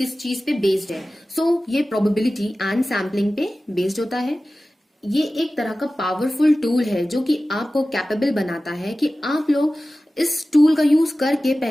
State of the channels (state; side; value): normal; both; correlation 0.96